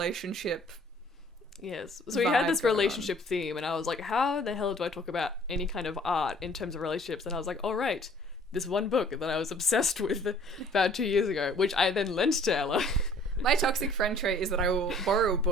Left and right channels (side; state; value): both; normal; correlation 0.55